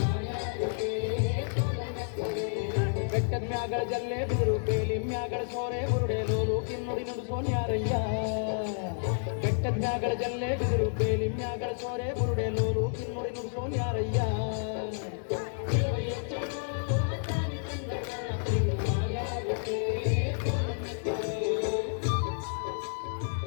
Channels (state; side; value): silent; right; digital silence